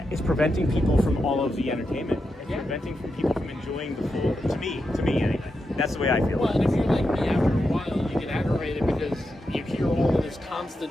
it's preventing people from all of the entertainment. It's preventing people from enjoying the full. To me anyway. That's the way I feel. Well, and if you're like me, after a while, you get aggravated because you hear all of this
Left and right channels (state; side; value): normal; both; correlation 0.87